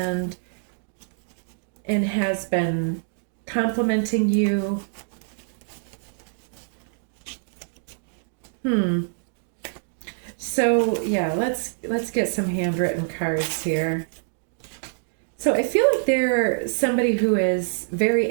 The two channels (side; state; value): left; silent; digital silence